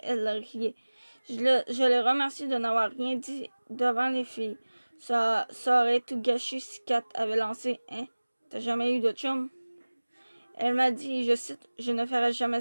riait. Je l'ai remercié de n'avoir rien dit devant les filles. Ça aurait tout gâché si Kat avait lancé « Hein, t'as jamais eu de chum? » Elle m'a dit, je cite, « Je ne ferai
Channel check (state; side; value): inverted; both; correlation -1.00